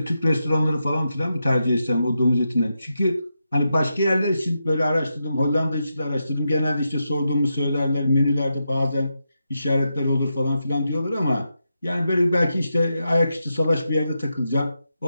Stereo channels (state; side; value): inverted; both; correlation -0.86